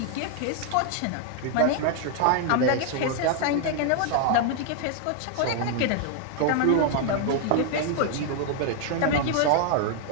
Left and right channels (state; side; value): different; both; correlation 0.00